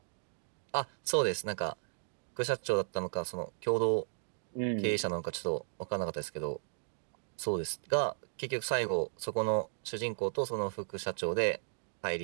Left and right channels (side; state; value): left; silent; digital silence